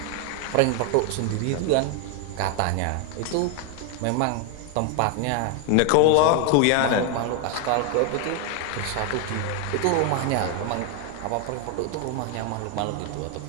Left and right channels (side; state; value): both; different; correlation 0.00